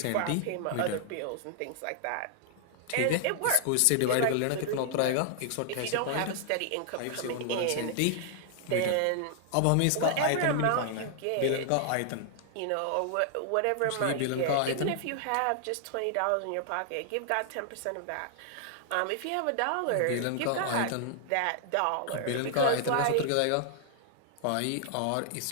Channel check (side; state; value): both; different; correlation 0.00